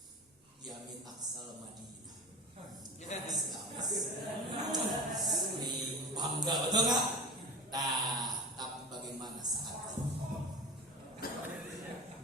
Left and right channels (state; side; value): normal; both; correlation 0.31